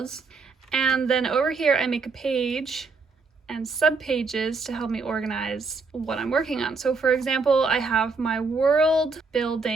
And then over here I make a page and subpages to help me organize what I'm working on. So for example, I have my world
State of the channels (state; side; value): quieter; left; 4.3 dB